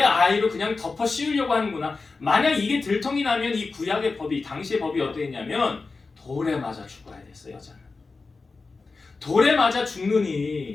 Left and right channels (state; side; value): quieter; right; 4.0 dB